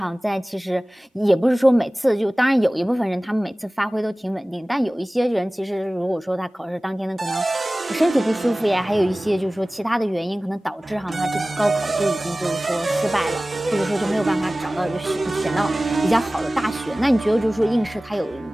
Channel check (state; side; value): normal; both; correlation 0.98